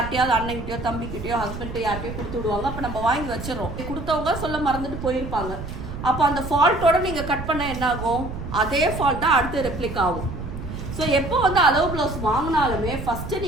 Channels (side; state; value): right; noise; rumble, 8 dB below the sound